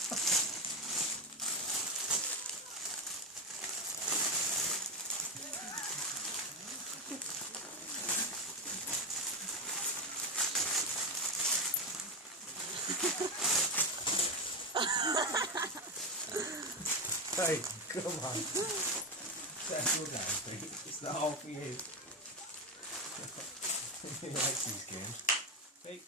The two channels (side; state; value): both; normal; correlation 0.15